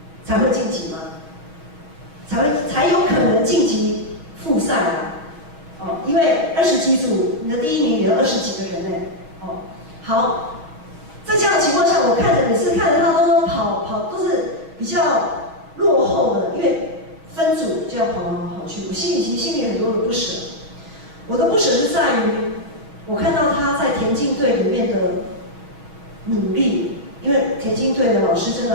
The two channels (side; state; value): left; late; 6.3 ms